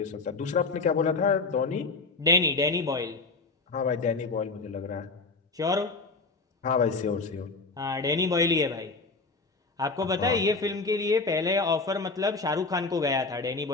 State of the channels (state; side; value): quieter; right; 3.8 dB